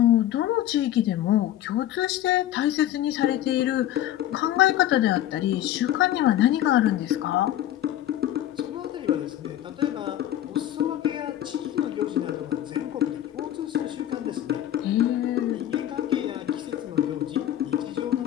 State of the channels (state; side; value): quieter; right; 12.5 dB